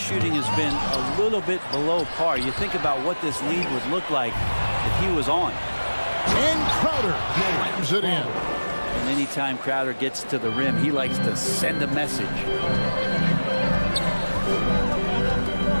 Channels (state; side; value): inverted; both; correlation -1.00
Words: has been a little bit below par. You think about what this lead would look like if he was on. And Crowder slams it in. And anytime Crowder gets to the rim, he likes to send a message.